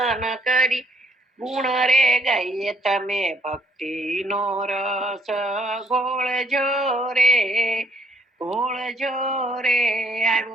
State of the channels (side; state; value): both; normal; correlation 0.67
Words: કરી ગુણ રે ગાઈએ. તમે ભક્તિ નો રસ ઘોળજો રે, ઘોળજો રે.